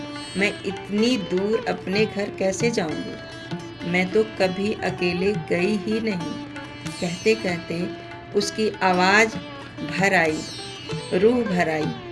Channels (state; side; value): identical; both; correlation 1.00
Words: मैं इतनी दूर अपने घर कैसे जाऊंगी? मैं तो कभी अकेले गई ही नहीं। कहते कहते उसकी आवाज़ भर आई, रूह भर आई।